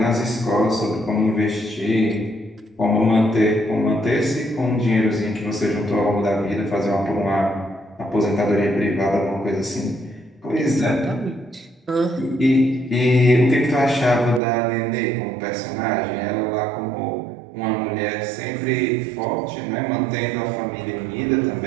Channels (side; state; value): left; drops out; at 14.4 s